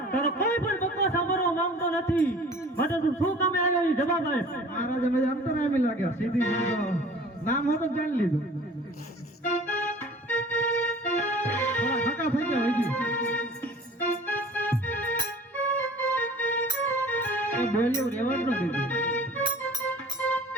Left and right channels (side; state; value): both; normal; correlation 0.45